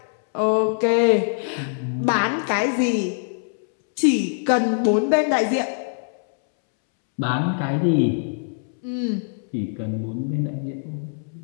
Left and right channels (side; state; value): right; silent; 63 dB below the other